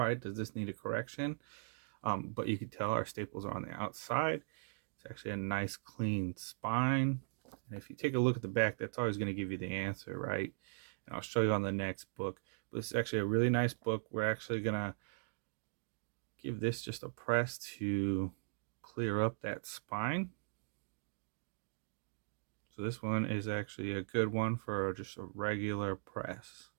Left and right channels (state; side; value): silent; left; digital silence